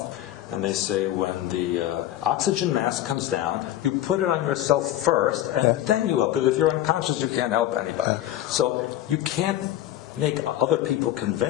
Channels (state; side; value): quieter; right; 13.2 dB